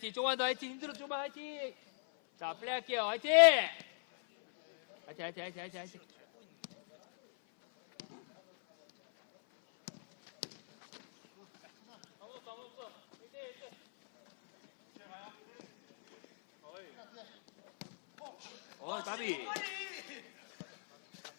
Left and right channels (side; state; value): right; silent; 53 dB below the other